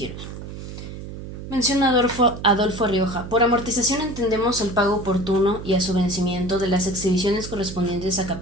Menciona Adolfo Rioja. Por amortización entendemos el pago oportuno y a su vencimiento de las exhibiciones correspondientes a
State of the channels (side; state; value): right; noise; hum, 10 dB below the sound